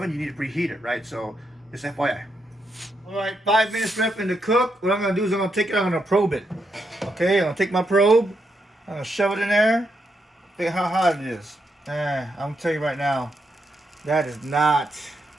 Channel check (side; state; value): both; normal; correlation 0.81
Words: you need to preheat it, right? So just FYI. All right, 5 minutes left in the cook. What I'm gonna do is I'm gonna take it. I'm gonna probe it. Okay, I'm gonna take my probe. I'm gonna shove it in there. Think how hot it is. I'm gonna tell you right now. That is not